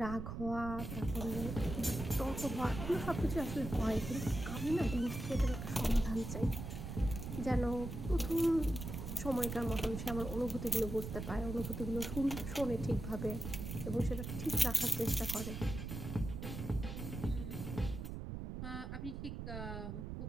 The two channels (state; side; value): noise; right; rumble, 6 dB below the sound